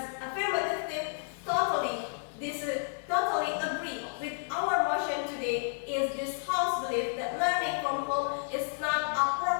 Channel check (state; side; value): silent; right; digital silence